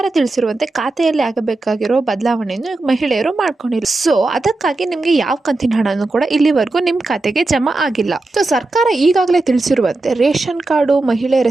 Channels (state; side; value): quieter; left; 3.1 dB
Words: ತಿಳಿಸಿರುವಂತೆ ಖಾತೆಯಲ್ಲಿ ಆಗಬೇಕಾಗಿರೋ ಬದಲಾವಣೆಯನ್ನು ಮಹಿಳೆಯರು ಮಾಡ್ಕೊಂಡಿಲ್ಲ. ಸೊ ಅದಕ್ಕಾಗಿ ನಿಮಗೆ ಯಾವ ಕಂತಿನ ಹಣನೂ ಕೂಡ ಇಲ್ಲಿವರೆಗೂ ನಿಮ್ಮ ಖಾತೆಗೆ ಜಮಾ ಆಗಿಲ್ಲ. ಸೊ ಸರ್ಕಾರ ಈಗಾಗಲೇ ತಿಳಿಸಿರುವಂತೆ ರೇಷನ್ ಕಾರ್ಡು ಮಹಿಳೆಯರ